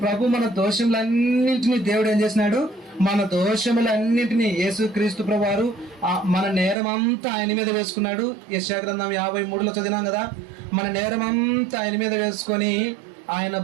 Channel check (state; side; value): drops out; left; at 6.8 s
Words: ప్రభు మన దోషములన్నింటినీ దేవుడు ఏం చేసినాడు? మన దోషములన్నింటినీ యేసుక్రీస్తు ప్రభువారు మన నేరం అంతా ఆయన మీద వేసుకున్నాడు. యెషయా గ్రంథం 53లో చదివినాం కదా, మన నేరం అంతా ఆయన మీద వేసుకొని ఆయన